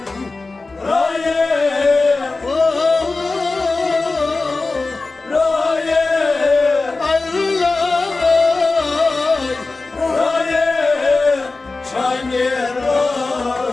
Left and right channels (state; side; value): quieter; right; 3.6 dB